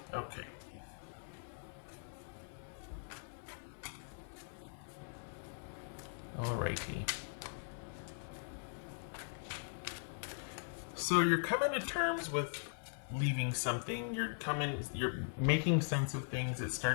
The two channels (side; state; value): right; silent; 51 dB below the other